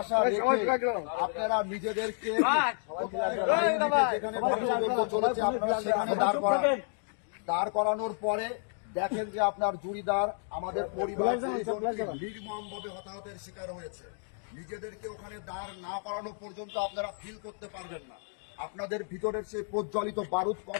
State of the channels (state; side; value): silent; right; 57 dB below the other